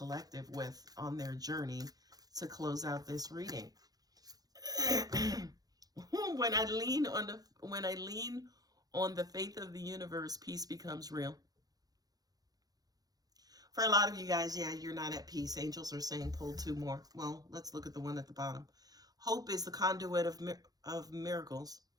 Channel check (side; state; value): left; late; 0.18 ms